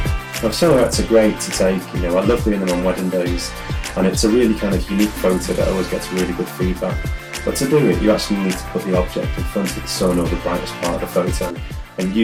Now, silhouettes are great to take, I love doing them on wedding days, and it's a really kind of unique photo that always gets really good feedback. But to do it, you actually need to put the object in front of the sun or the brightest part of the photo, and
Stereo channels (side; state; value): both; identical; correlation 1.00